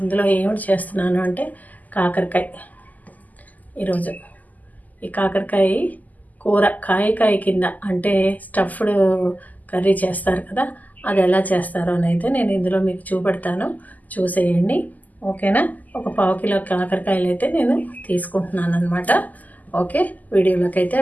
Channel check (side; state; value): right; late; 0.080 ms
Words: ఇందులో ఏమిటి చేస్తున్నాను అంటే కాకరకాయ. ఈరోజు ఈ కాకరకాయ కూర కాయ కింద అంటే స్టఫ్డ్ కర్రీ చేస్తారు కదా, అది ఎలా చేస్తారో అని అయితే నేను ఇందులో మీకు చూపెడతాను, చూసేయండి. ఓకేనా? ఒక 1/2 కిలో కాకరకాయలు అయితే నేను తీసుకుంటున్నాను అనమాట. ఓకే, వీడియోలోకి అయితే